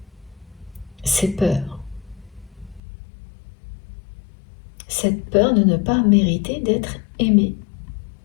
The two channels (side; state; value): right; drops out; at 2.8 s